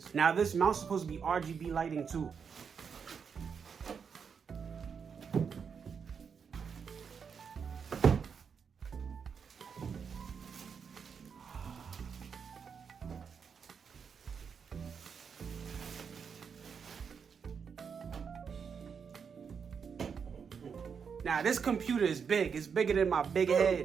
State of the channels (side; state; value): left; quieter; 6.4 dB